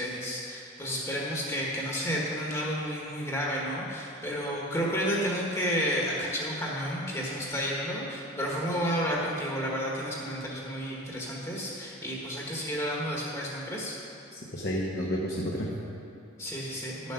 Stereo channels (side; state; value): both; normal; correlation 0.35